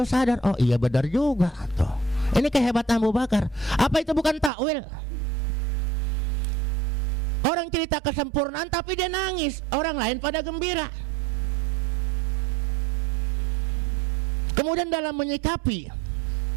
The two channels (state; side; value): drops out; left; at 4.5 s